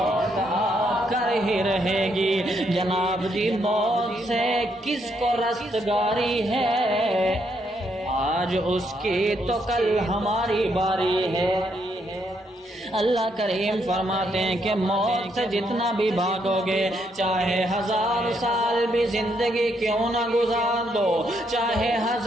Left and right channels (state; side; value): normal; both; correlation 0.75